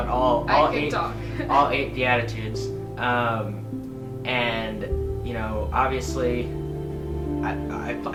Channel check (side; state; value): both; identical; correlation 1.00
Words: all 8 Beatitudes. And obviously